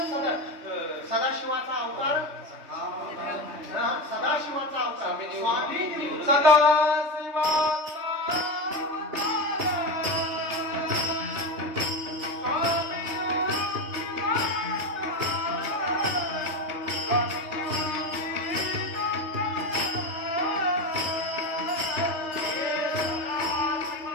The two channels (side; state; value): left; late; 3.2 ms